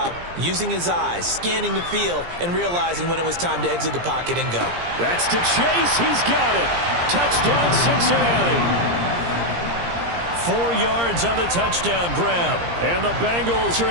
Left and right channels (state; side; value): late; left; 17 ms